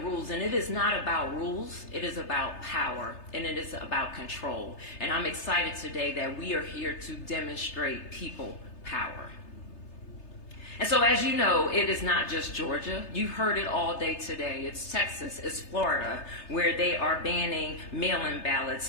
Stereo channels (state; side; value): late; right; 3.3 ms